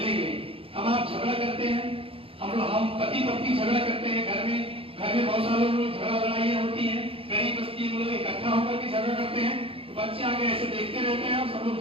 हम आप झगड़ा करते हैं, हम पति पत्नी झगड़ा करते हैं, घर में बहुत सारे लोग झगड़ा लड़ाइयाँ होती हैं, गरीब बस्ती में लोग इकट्ठा होकर के झगड़ा करते हैं, तो बच्चे आगे ऐसे देखते रहते हैं और सब लोग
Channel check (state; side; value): late; left; 0.27 ms